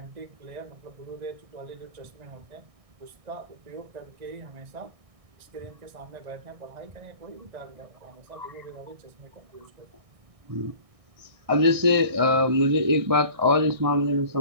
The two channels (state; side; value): late; left; 1.6 ms